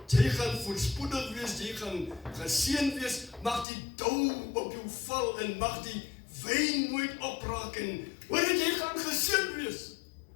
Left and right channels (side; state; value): right; drops out; at 3.7 s